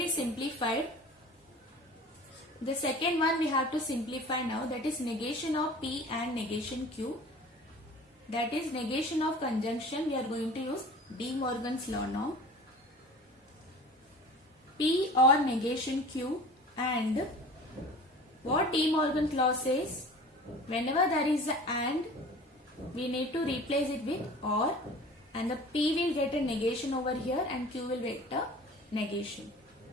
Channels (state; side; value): normal; both; correlation 0.42